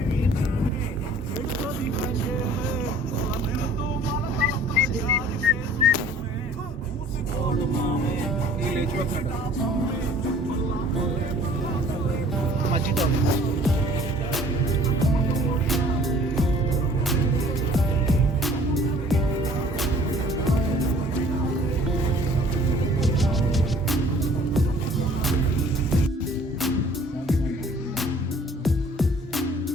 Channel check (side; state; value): both; normal; correlation 0.53